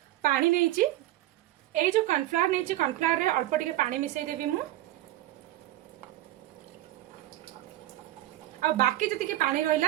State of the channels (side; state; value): left; quieter; 14.9 dB